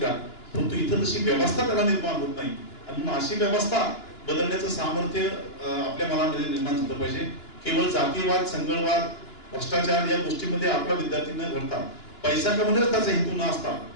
का? परंतु इथं तशी व्यवस्था त्याला निर्माण होत नाही. आणि म्हणून अशी व्यवस्था बदलण्याचं सामर्थ्य आपल्या मनामध्ये निर्माण झालं पाहिजे. केवळ जातीयवाद, संघर्षवाद, भ्रष्टाचार या गोष्टीमध्ये आपला विद्यार्थी न घडता, पैसा कमवण्याचा त्याचा हेतू न असता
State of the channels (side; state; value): right; late; 2.9 ms